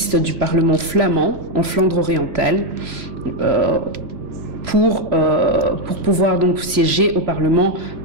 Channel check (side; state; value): left; late; 3.0 ms